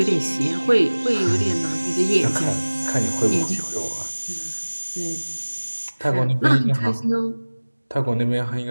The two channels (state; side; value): inverted; both; correlation -1.00